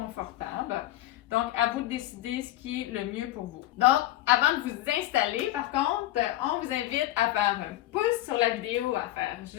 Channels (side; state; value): right; quieter; 15.1 dB